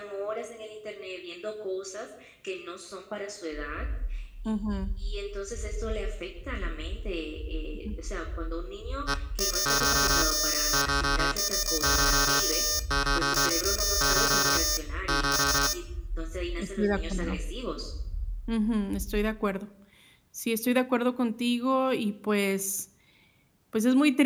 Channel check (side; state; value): both; identical; correlation 1.00